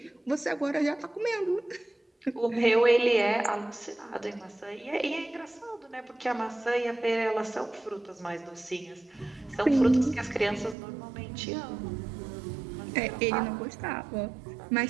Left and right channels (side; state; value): left; drops out; at 10.8 s